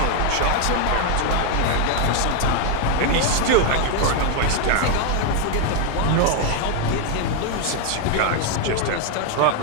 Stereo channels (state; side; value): different; both; correlation 0.01